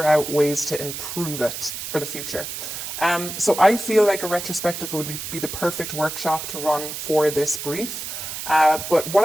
out ways to improve it for the future. So I feel like a retrospective would be the perfect workshop to run for this brief. But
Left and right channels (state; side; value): noise; right; hiss, 7 dB below the sound